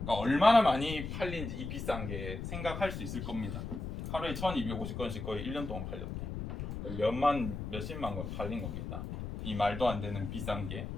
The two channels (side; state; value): left; noise; rumble, 6 dB below the sound